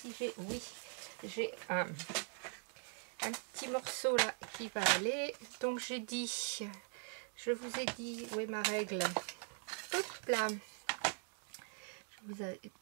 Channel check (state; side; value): silent; left; 50 dB below the other